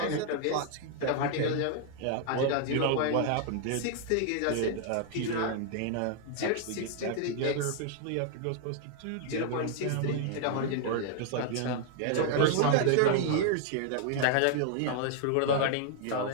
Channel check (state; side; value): different; both; correlation 0.00